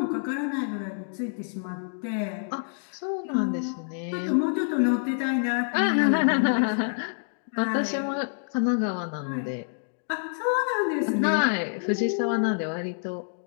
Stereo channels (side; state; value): right; silent; digital silence